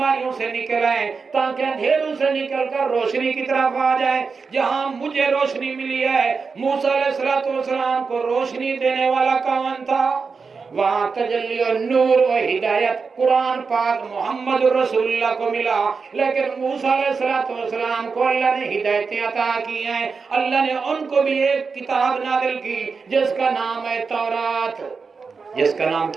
سے نکل آئیں، تاکہ اندھیروں سے نکل کر روشنی کی طرف آ جائیں۔ جہاں مجھے روشنی ملی ہے، موسیٰ علیہ السلام کو روشنی دینے والا کون تھا؟ وہاں تجلی و نور و ہدایت قرآن پاک محمد رسول اللہ کو ملا، لیکن موسیٰ علیہ السلام کو اللہ نے ہدایتیں عطا کی ہیں، اللہ نے ان کو بھی ایک کتاب نازل کی جس کا نام ہے تورات، جس کا نام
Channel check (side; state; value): left; quieter; 5.0 dB